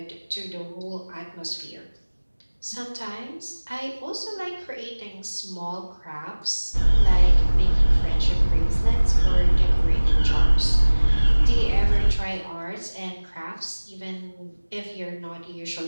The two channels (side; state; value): both; inverted; correlation -1.00